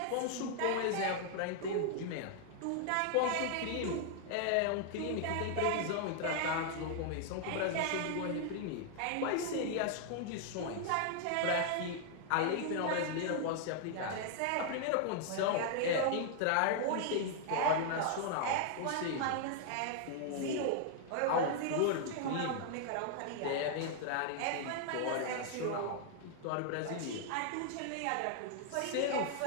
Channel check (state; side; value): different; both; correlation 0.00